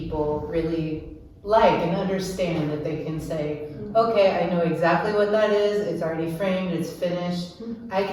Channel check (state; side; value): identical; both; correlation 1.00